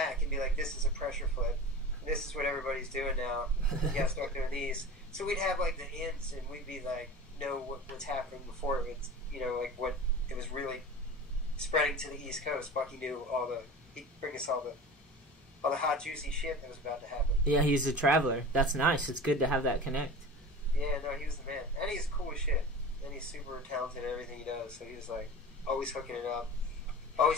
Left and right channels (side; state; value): both; normal; correlation 0.34